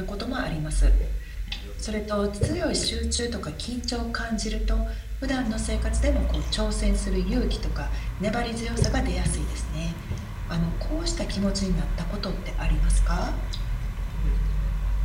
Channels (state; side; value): identical; both; correlation 1.00